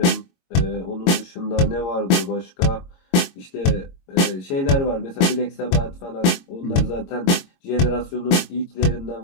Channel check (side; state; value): right; late; 22 ms